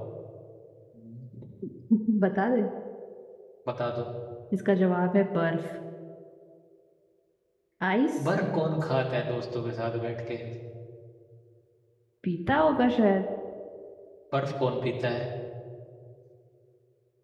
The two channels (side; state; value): both; identical; correlation 1.00